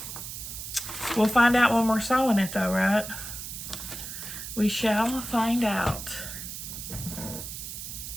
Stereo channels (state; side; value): noise; right; hiss, 8 dB below the sound